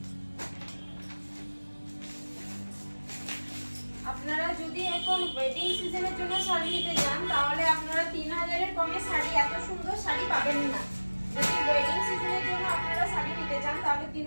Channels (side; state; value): both; inverted; correlation -1.00